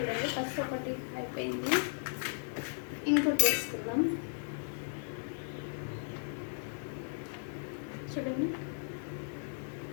ఫస్ట్ ఒకటి అయిపోయింది, ఇంకోటి వేసుకుందాం. చూడండి.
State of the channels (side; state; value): right; silent; 54 dB below the other